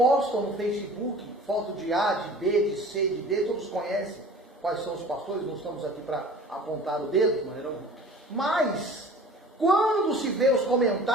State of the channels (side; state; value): both; normal; correlation 0.44